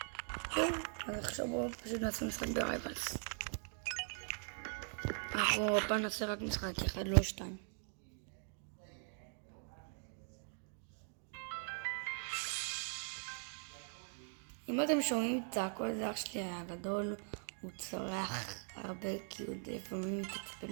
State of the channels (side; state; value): left; silent; 50 dB below the other